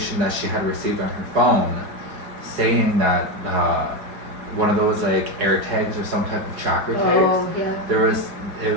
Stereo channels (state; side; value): late; left; 4.8 ms